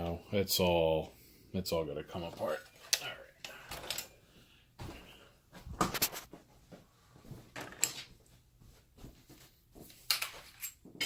it's all gonna come apart. All right.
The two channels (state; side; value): identical; both; correlation 1.00